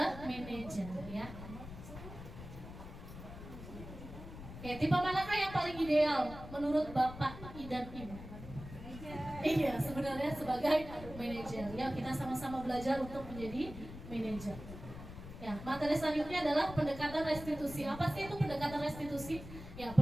manajer ya. Oke, tipe manakah yang paling ideal menurut Bapak dan Ibu? Manajer. Iya, sebenarnya sebagai manajer. Ya, kita sama-sama belajar untuk menjadi manajer. Ya, materi selanjutnya adalah pendekatan restitusi. Apa sih itu pendekatan restitusi? Ya,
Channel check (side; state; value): left; noise; rumble, 12 dB below the sound